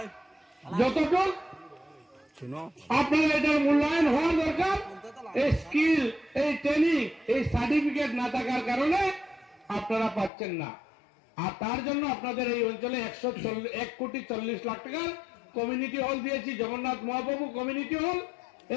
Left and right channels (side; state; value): right; drops out; at 10.3 s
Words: যতটুকু আপনারা এটার মূল্যায়ন হওয়ার দরকার, এই স্কিল, এই ট্রেনিং, এই সার্টিফিকেট না থাকার কারণে আপনারা পাচ্ছেন না। আর তার জন্য আপনাদের এই অঞ্চলে 1,40,00,000 টাকার কমিউনিটি হল দিয়েছি, জগন্নাথ মহাপ্রভু কমিউনিটি হল।